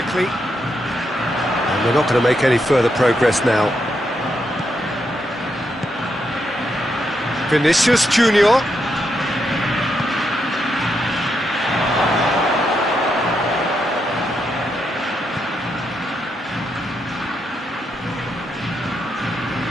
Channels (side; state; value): both; normal; correlation 0.81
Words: And they're not going to make any further progress now. Vinicius Junior.